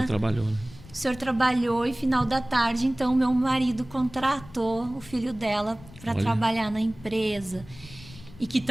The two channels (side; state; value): left; noise; rumble, 19 dB below the sound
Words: trabalhou, né? O Senhor trabalhou e final da tarde, então, meu marido contratou o filho dela para trabalhar na empresa. E que